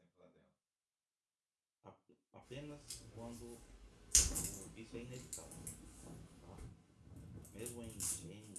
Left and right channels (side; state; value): both; identical; correlation 1.00